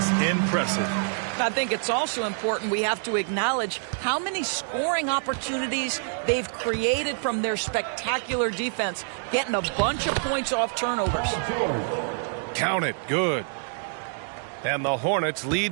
impressive. I think it's also important we have to acknowledge how many scoring opportunities they've created from their spectacular defense, getting a bunch of points off turnovers. Count it. Good. And the Hornets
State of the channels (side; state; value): left; silent; digital silence